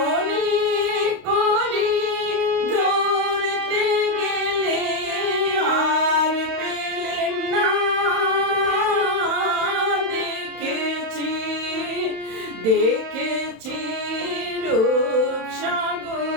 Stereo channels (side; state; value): left; late; 31 ms